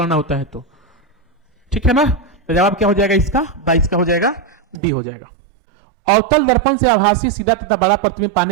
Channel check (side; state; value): left; drops out; at 4.8 s